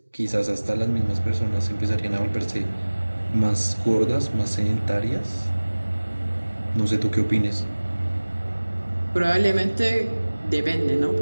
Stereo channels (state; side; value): inverted; both; correlation -1.00